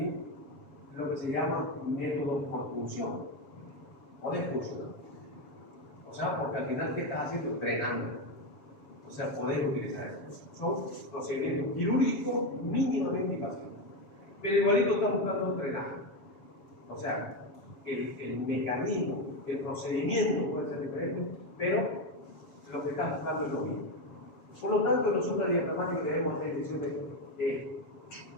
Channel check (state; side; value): late; right; 7.2 ms